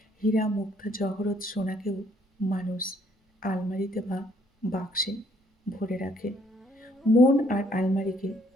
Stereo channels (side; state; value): both; normal; correlation 0.65